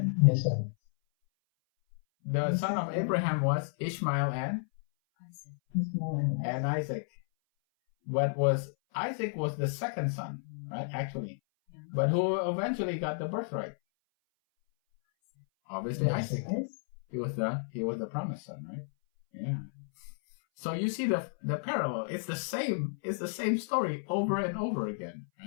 Yes, sir. The son of Abraham was Ishmael and Isaac. But Isaac was the second son, right? Actually. But who eventually got the birthright? Obviously Isaac. He was the promised son, right? Yeah. So you see the parallel. It's the same story over and over again,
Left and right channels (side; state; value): right; silent; 57 dB below the other